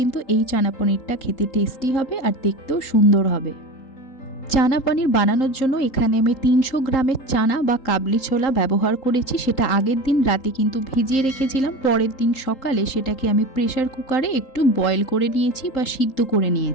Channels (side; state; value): right; late; 3.8 ms